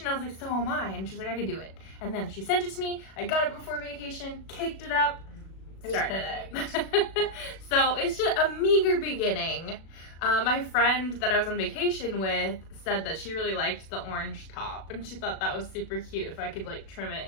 I was like, so am I. And she was like, I could do it. And then she sent it to me. I got it before vacation, caked it up, started it. So it's just a meager beginning. My friend that I was on vacation with said that she really liked the orange top, and she thought that was super cute if I could like trim it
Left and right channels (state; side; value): late; right; 37 ms